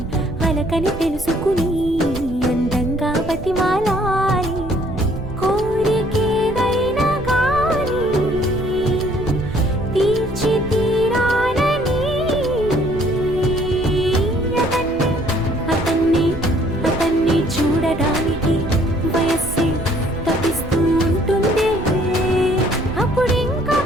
అలకని తెలుసుకుని అందంగా బతిమాలాలి కోరికేదైనా గాని తీర్చి తీరాలని అతన్ని అతన్ని చూడడానికి వయస్సే తప్పిస్తూ ఉంటుంది అప్పుడింకా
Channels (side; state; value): right; noise; rumble, 12 dB below the sound